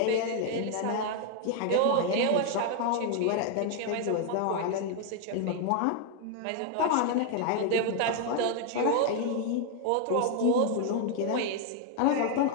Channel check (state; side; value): different; both; correlation 0.00